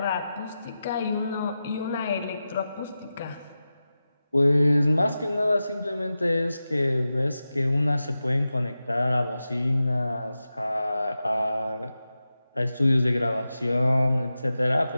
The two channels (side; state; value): both; inverted; correlation -0.93